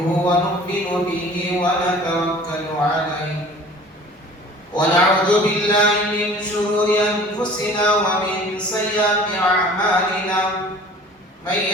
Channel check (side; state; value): both; normal; correlation 0.47